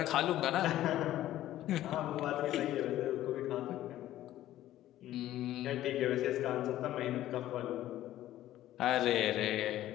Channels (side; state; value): right; quieter; 13.7 dB